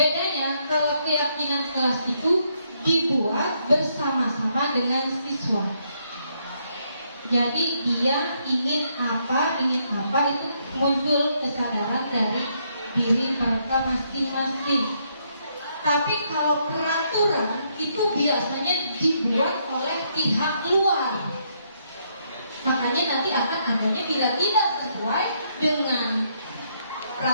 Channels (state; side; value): inverted; both; correlation -0.74